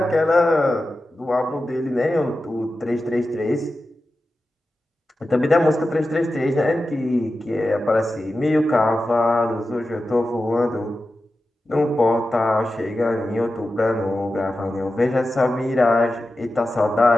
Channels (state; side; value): normal; both; correlation 0.93